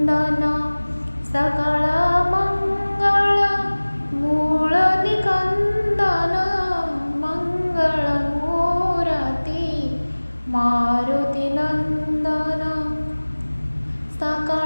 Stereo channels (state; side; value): inverted; both; correlation -1.00